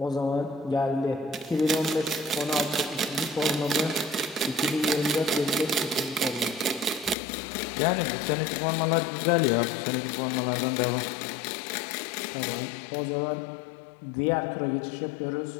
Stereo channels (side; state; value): right; drops out; at 7.2 s